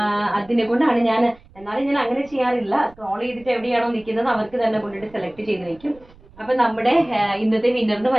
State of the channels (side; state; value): right; noise; rumble, 26 dB below the sound